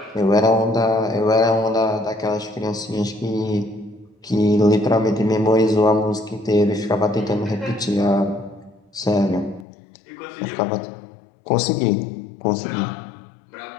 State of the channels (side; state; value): right; drops out; at 9.7 s